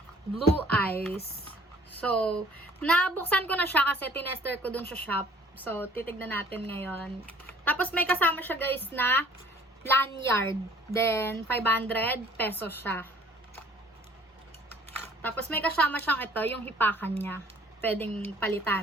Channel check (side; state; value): both; normal; correlation 0.54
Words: Blue Ice. So, nabuksan ko na siya kasi tinester ko dun sa shop. So, titignan natin ngayon. Tapos, may kasama siya guys na lanyard. Then, 500 pesos siya. Tapos, may kasama siyang ito, yung hipakan niya. Pwedeng